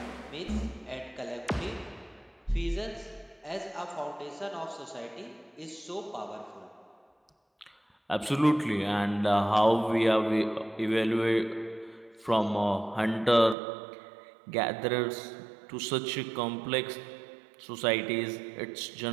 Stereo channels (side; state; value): left; drops out; at 13.6 s